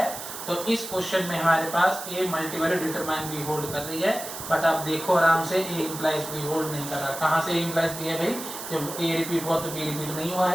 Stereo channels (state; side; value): noise; right; hiss, 9 dB below the sound